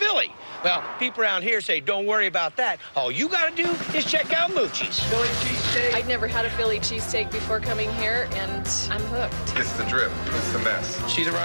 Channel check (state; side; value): inverted; both; correlation -1.00